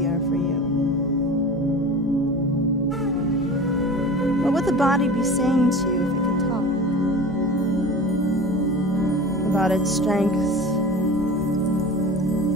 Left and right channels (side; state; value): both; normal; correlation 0.35